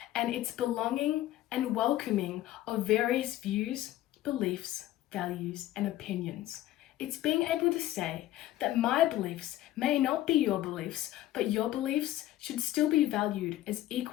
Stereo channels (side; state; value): right; quieter; 14.3 dB